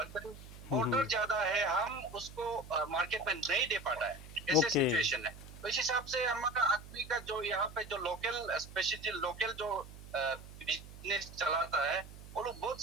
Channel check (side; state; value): right; noise; hum, 15 dB below the sound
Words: ऑर्डर ज्यादा है हम उसको मार्केट में नहीं दे पाता है ऐसे सिचुएशन है तो इस हिसाब से हमारा आदमी का जो यहाँ पे जो लोकल स्पेशली लोकल जो बिजनेस चलाता है वो लोग बहुत